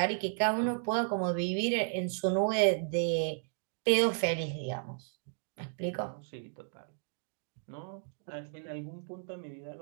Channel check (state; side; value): silent; left; digital silence